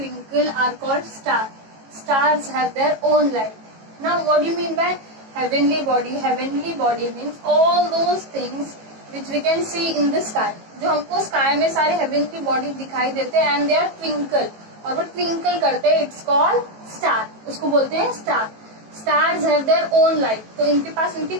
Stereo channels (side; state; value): left; late; 18 ms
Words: are called star. Stars have their own light. Now what do you mean by heavenly body? Heavenly body means all those things which we can see in the sky. जो हमको sky में सारे heavenly body दिखाई देते हैं and they are twinkle. और वो twinkle करते हैं, it's called star. उसको बोलते हैं star. Stars have their own light. तो इनके पास इनकी